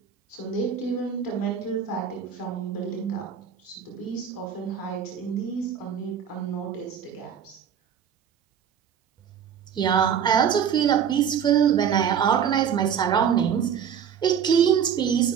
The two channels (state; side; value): quieter; left; 8.1 dB